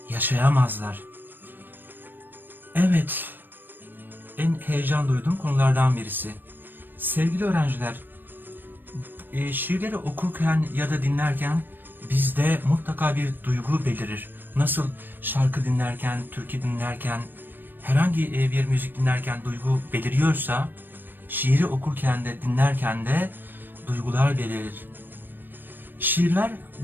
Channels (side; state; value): left; late; 0.093 ms